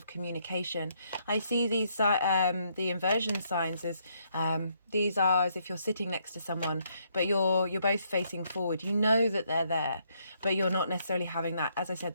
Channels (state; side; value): inverted; both; correlation -0.73